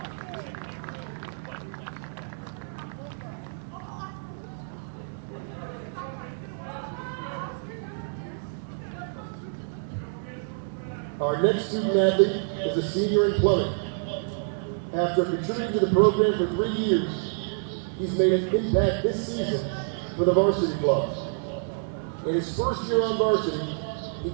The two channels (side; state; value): left; silent; digital silence